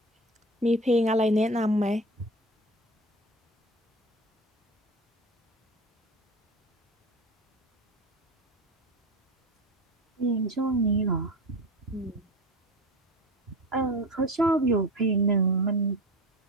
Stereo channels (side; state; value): both; normal; correlation 0.30